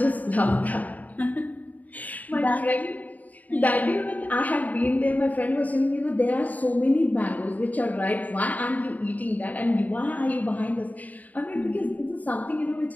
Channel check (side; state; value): right; late; 0.076 ms